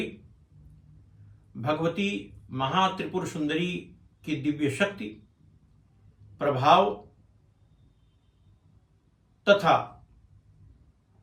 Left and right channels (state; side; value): identical; both; correlation 1.00